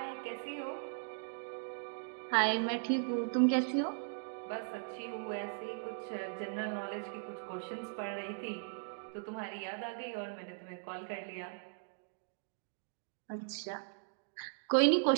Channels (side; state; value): left; silent; digital silence